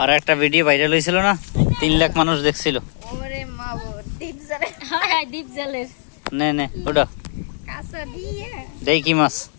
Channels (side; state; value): right; silent; digital silence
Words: একটা video viral হয়েছিল না, 3 লাখ মানুষ দেখছিল। নে নে ওটা দেই কি মাছ